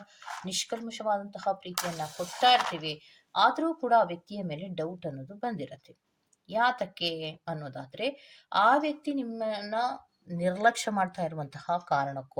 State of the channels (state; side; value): identical; both; correlation 1.00